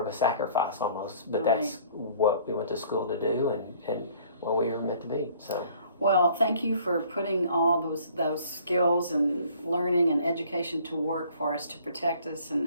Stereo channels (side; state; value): both; inverted; correlation -0.56